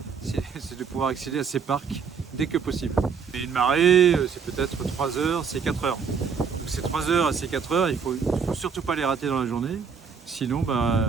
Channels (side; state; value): left; quieter; 6.1 dB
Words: c'est de pouvoir accéder à ces parcs dès que possible. Et une marée, c'est peut-être 3 heures, c'est 4 heures. Donc ces 3 heures et ces 4 heures, il faut surtout pas les rater dans la journée, sinon